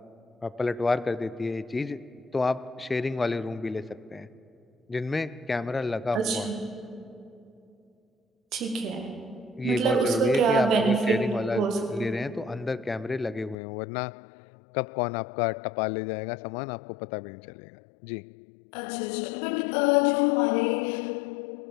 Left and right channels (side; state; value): right; drops out; at 13.6 s